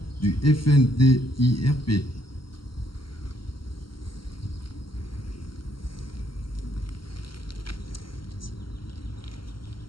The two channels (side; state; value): right; late; 0.73 ms